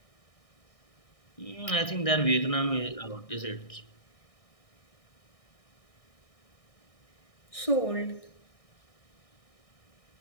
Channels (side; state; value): right; late; 1.6 ms